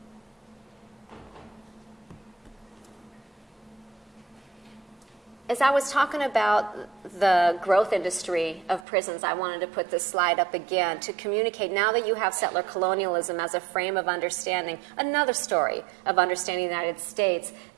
As I was talking about the growth industry of prisons, I wanted to put this slide up again to communicate, now that you have settler colonialism as a frame of understanding, another story of understanding the United States,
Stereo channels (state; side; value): drops out; left; at 8.8 s